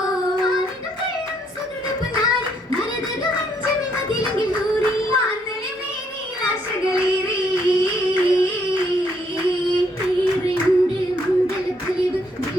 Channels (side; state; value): both; normal; correlation 0.71